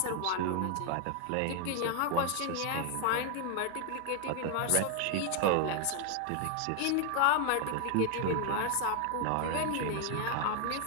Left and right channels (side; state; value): both; different; correlation 0.00